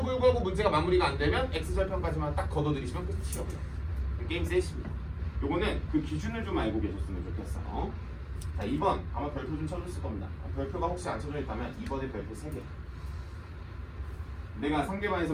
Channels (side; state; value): both; identical; correlation 1.00